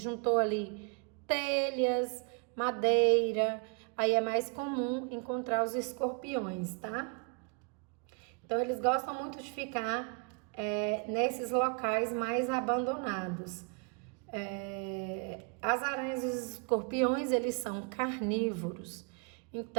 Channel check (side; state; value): left; quieter; 35.9 dB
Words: ali telhas, madeira, aí é mais comum encontrar os escorpiões, tá? Então, eles gostam muito de ficar nesses locais mais abandonados. As aranhas e os escorpiões, eles são carnívoros.